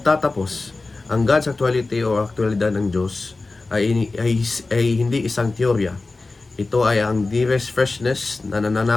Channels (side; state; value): right; quieter; 3.5 dB